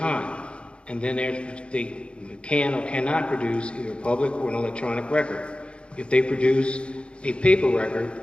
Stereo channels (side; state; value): right; late; 0.057 ms